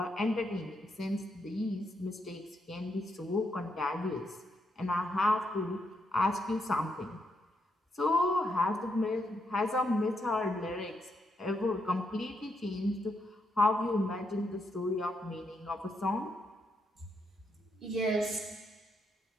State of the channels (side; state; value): both; normal; correlation 0.79